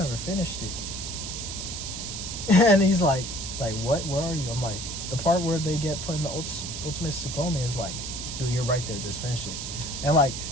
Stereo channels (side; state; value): right; noise; hiss, 6 dB below the sound